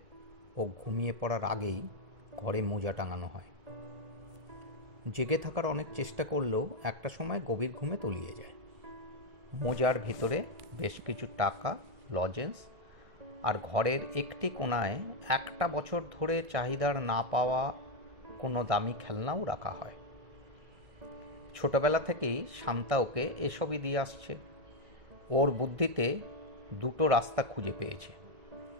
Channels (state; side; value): late; left; 1.6 ms